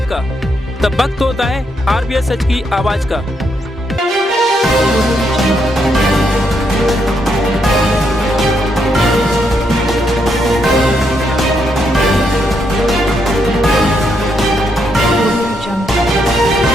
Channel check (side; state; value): both; normal; correlation 0.78